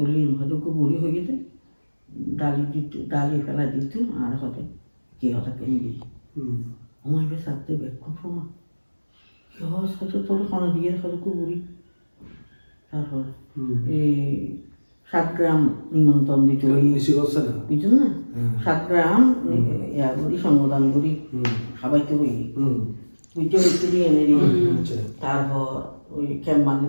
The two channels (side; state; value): both; inverted; correlation -1.00